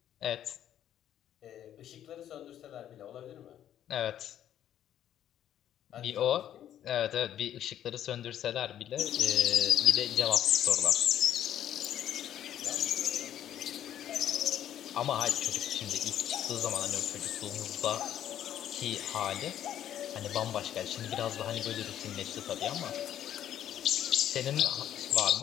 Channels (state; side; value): quieter; right; 10.9 dB